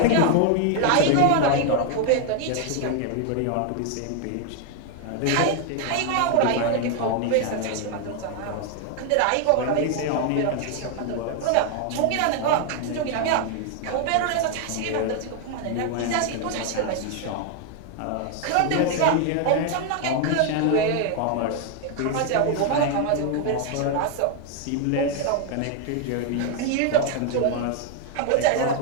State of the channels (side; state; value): both; different; correlation 0.00